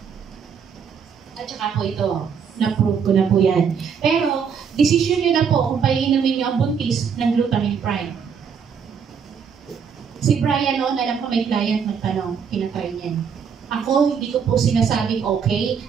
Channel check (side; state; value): left; quieter; 6.8 dB